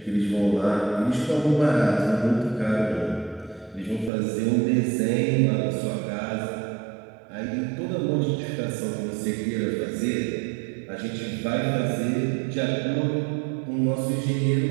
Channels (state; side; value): drops out; left; at 4.1 s